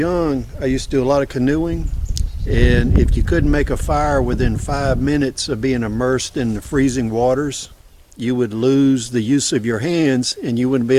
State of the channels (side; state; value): both; identical; correlation 1.00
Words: I used to do a lot of canoeing, and if you couldn't make a fire within 5 minutes of being immersed in the freezing waters, you would lose the use of your hands and you wouldn't be